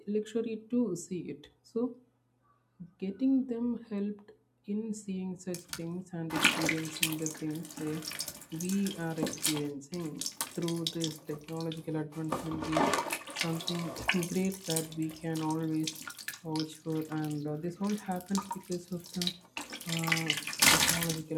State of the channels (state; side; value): identical; both; correlation 1.00